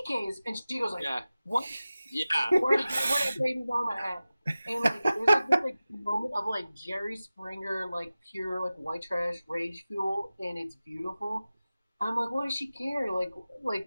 And she goes yeah. What? Yeah. Where did baby mama at? And there's this moment of Jerry Springer, pure white trash rage fuel, and it's beautiful. I'm like, what does she care?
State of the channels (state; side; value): inverted; both; correlation -0.96